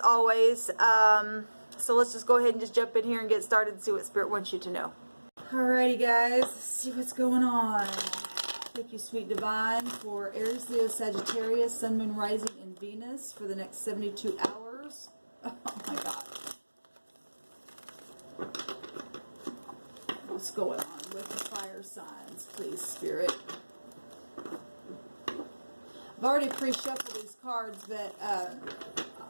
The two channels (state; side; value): inverted; both; correlation -1.00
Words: So let's just go ahead and just jump in here and get started and see what Spirit wants you to know. Alrighty guys, let's see what's going on. Thank you, Sweet Divine, for Aries, Leo, Sagittarius, Sun, Moon, Rising, and Venus for the next 72 hours. Oh my God. What's going on with the fire signs, please, Spirit? I've already pre-shuffled these cards, but